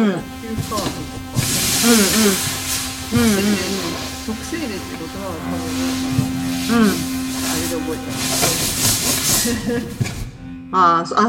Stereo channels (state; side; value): identical; both; correlation 1.00